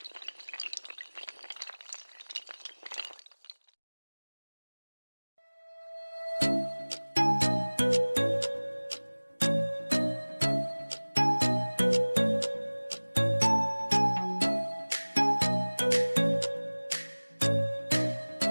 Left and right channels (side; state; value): both; inverted; correlation -1.00